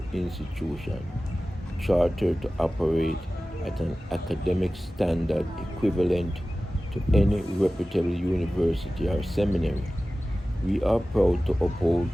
institution chartered to operate at an academic standard equivalent to any reputable university or seminary. We are proud to uphold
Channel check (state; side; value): normal; both; correlation 0.96